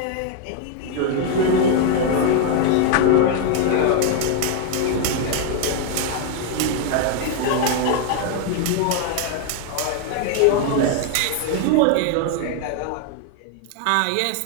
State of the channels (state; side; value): different; both; correlation 0.00